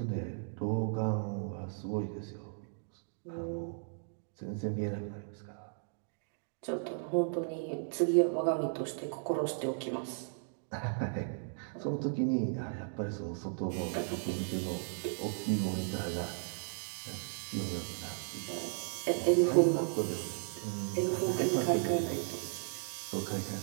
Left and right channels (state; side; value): silent; left; digital silence